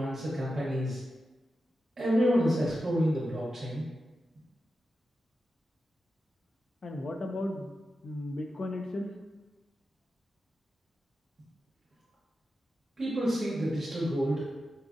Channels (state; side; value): normal; both; correlation 0.90